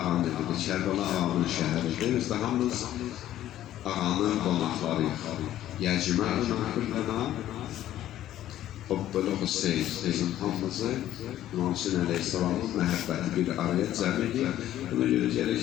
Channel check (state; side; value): quieter; right; 12.8 dB